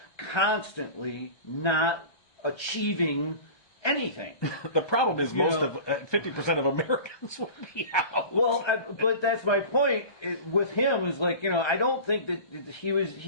Constantly not achieving anything. The problem is 50% of Americans will be out. Well, but that's my point with him is like, I don't think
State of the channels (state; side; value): late; right; 1.3 ms